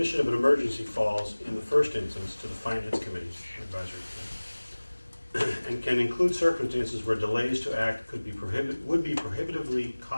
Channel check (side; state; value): both; inverted; correlation -1.00